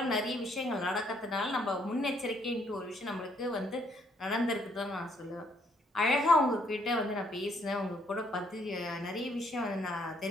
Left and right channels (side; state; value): both; normal; correlation 0.69